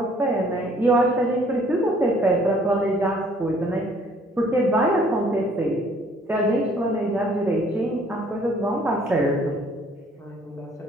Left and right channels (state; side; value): normal; both; correlation 0.59